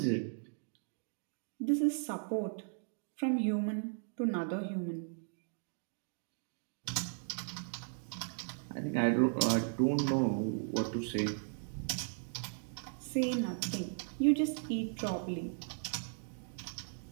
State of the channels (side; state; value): left; silent; digital silence